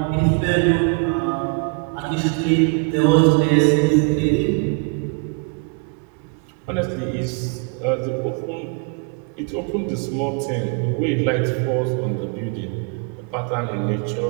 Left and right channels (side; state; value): left; quieter; 34.9 dB